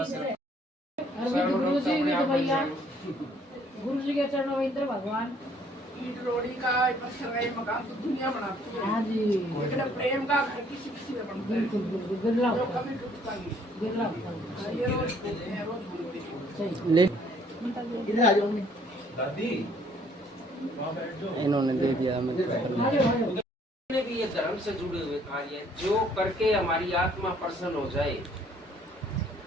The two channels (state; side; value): normal; both; correlation 0.62